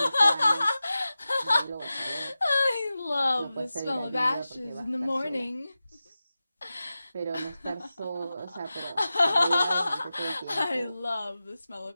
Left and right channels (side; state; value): both; inverted; correlation -0.94